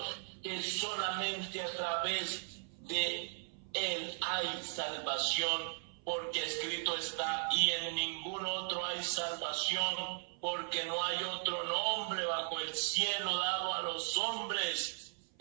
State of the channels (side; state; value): left; silent; 53 dB below the other